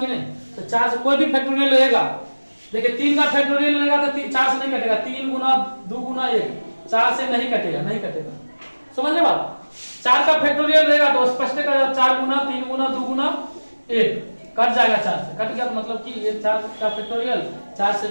की नहीं? तो 4 से कोई भी फैक्टोरियल रहेगा, देखिए 3 का फैक्टोरियल रहेगा तो 4 से नहीं कटेगा, 3 गुना 2 गुना 1 4 से नहीं कटेगा, नहीं कटेगा। समझ रहे बात? 4 का फैक्टोरियल रहेगा तो स्पष्ट है 4 गुना 3 गुना 2 गुना 1 कट जाएगा, 4 से कट गया तो मतलब कि ये 4 का फैक्टोरियल 4 से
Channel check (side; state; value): both; inverted; correlation -1.00